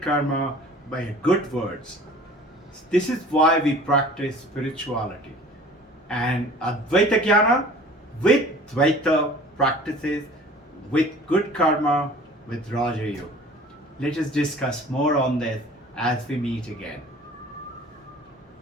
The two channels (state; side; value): normal; both; correlation 0.46